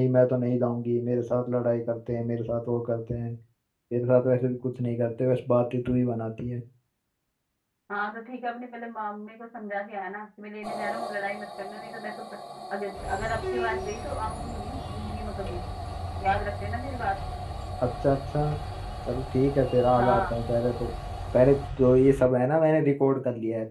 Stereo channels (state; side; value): identical; both; correlation 1.00